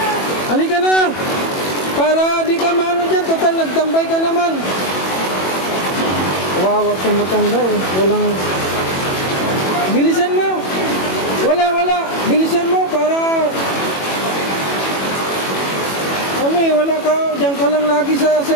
halika na. Para di ka maano dyan. Total, nagtambay ka naman. Wawa itong matanda eh. Walang... Bilisan mo. Wala. Bilisan mo para... Ano eh, wala ka. Diyan ka lang lagi sa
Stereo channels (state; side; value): late; right; 21 ms